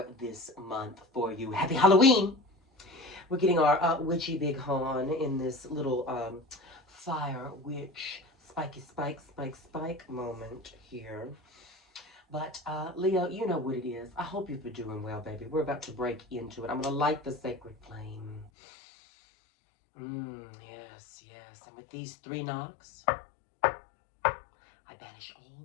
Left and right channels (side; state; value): right; drops out; at 18.5 s